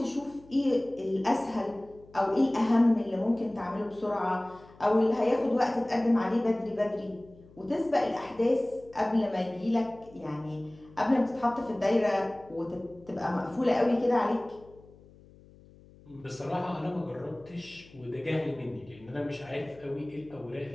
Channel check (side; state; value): left; noise; hum, 24 dB below the sound